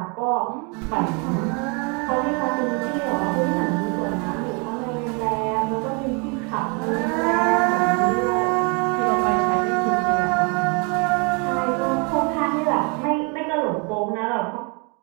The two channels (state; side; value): quieter; left; 33.1 dB